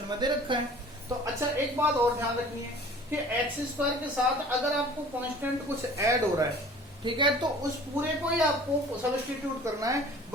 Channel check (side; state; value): both; normal; correlation 0.47